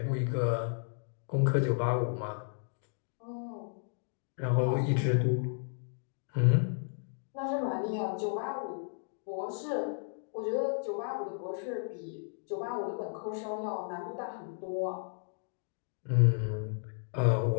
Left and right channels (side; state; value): right; silent; digital silence